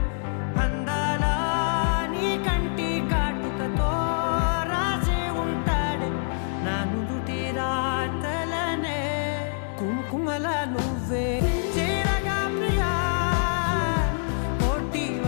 అందాల నీ కంటి కాటుకతో రాసే ఉంటాడే నా నుదుటి రాతలనే కుంకుమల నువ్వే చేరగా ప్రియా కోటి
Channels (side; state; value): right; silent; digital silence